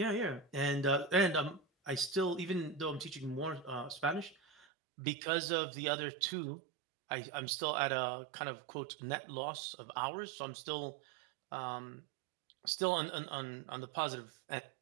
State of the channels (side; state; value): left; drops out; at 4.7 s